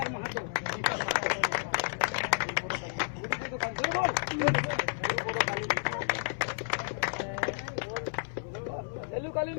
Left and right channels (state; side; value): silent; right; 57 dB below the other